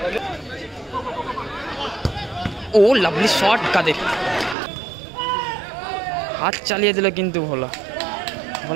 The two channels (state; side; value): drops out; left; at 4.5 s